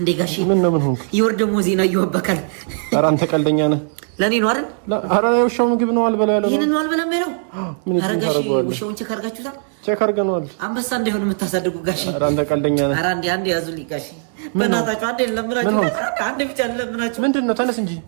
ጋሺ ምን ሆንኩ ይወርደሞ ዜና ይወበካል ኧረ አንተ ቀልደኛ ነህ ለኔ ነው አይደል ኧረ ውሻው ምግብ ነው አልበላ ያለው ይሄን ነው አልበላም ያለው ኧረ ጋሺ ውሻውን ቼክ አድርጋችሁታል ቼክ አድርገናል አንበሳ እንዳይሆን የምታሳድጉ ጋሺ ኧረ አንተ ቀልደኛ ነህ ኧረ አንዴ ያዙልኝ ጋሺ በእናታችሁ አንዴ ለምናችሁ አንዴ ብቻ ለምናችሁ ምንድነው ተነስ እንጂ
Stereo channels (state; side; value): silent; left; digital silence